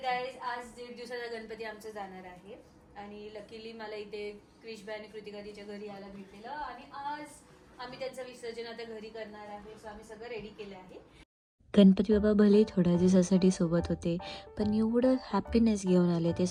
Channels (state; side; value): identical; both; correlation 1.00